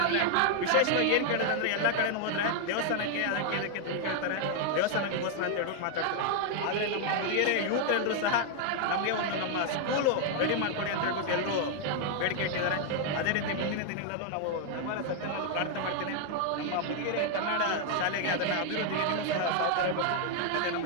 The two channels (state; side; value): different; both; correlation 0.00